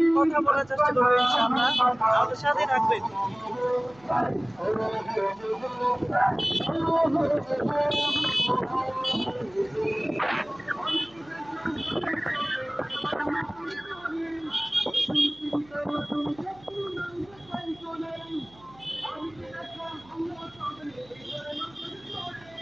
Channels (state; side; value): noise; right; hum, 26 dB below the sound